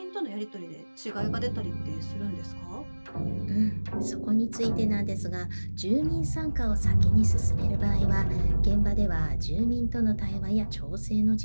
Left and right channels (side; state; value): both; inverted; correlation -1.00